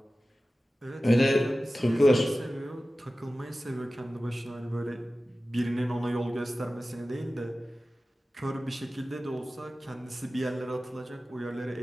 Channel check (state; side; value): normal; both; correlation 0.95